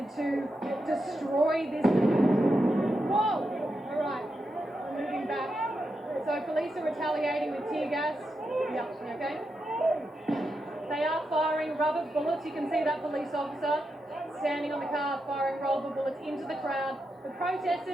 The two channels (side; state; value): both; normal; correlation 0.86